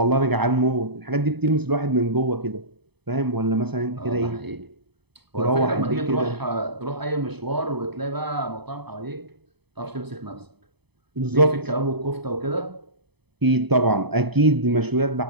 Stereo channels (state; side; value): late; left; 0.98 ms